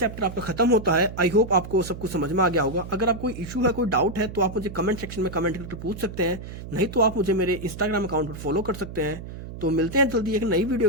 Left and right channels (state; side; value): noise; right; hum, 11 dB below the sound